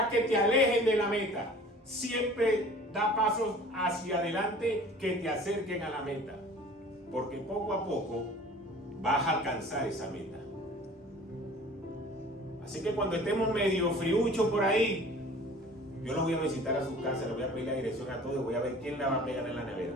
que te alejen de la meta. Siempre da pasos hacia adelante que te acerquen a la meta. Porque poco a poco vas a alcanzar esa meta. Así que cuando estemos medio friuchos por ahí, yo los voy a visitar a sus casas, les voy a pedir la dirección a todos, voy a ver quién la va a pegar en la nevera.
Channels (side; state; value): both; normal; correlation 0.46